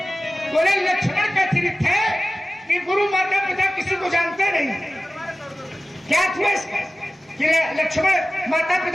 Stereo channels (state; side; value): normal; both; correlation 0.97